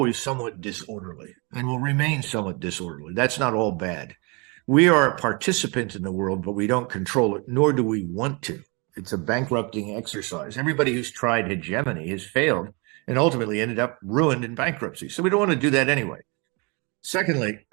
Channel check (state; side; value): quieter; left; 30.4 dB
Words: somewhat disorderly and will remain somewhat disorderly. That's not all bad. We are a participant in the world, but we don't control it, nor do we want to. It's a bankrupting exercise. Everybody who's tried hegemony has failed and ultimately ended up ruined in bankruptcy. So we don't want to do that anyway. Secondly,